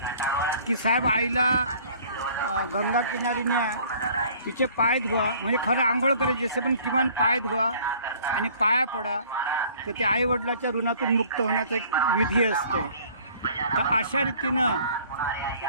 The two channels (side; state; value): both; inverted; correlation -0.53